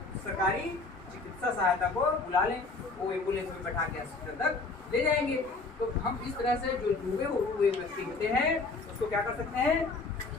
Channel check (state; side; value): quieter; right; 3.8 dB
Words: सरकारी चिकित्सा सहायता को बुला लें, वो एम्बुलेंस में बैठा के अस्पताल तक ले जाएंगे। तो हम इस तरह से जो डूबे हुए व्यक्ति होते हैं उसको क्या कर सकते हैं,